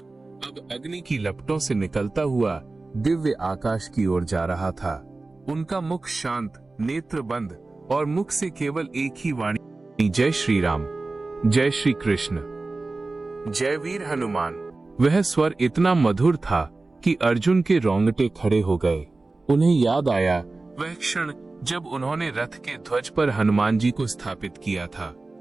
अब अग्नि की लपटों से निकलता हुआ दिव्य आकाश की ओर जा रहा था। उनका मुख शांत, नेत्र बंद और मुख से केवल एक ही वाणी, जय श्री राम, जय श्री कृष्ण, जय वीर हनुमान। वह स्वर इतना मधुर था कि अर्जुन के रोंगटे खड़े हो गए। उन्हें याद आया वह क्षण जब उन्होंने रथ के ध्वज पर हनुमान जी को स्थापित किया था।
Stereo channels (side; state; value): left; quieter; 3.4 dB